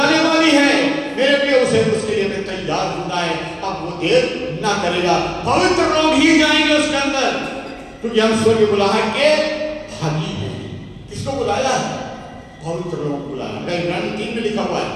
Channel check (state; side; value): identical; both; correlation 1.00